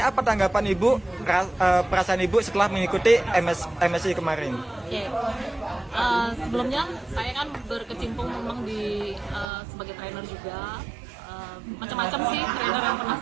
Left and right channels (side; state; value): left; drops out; at 9.5 s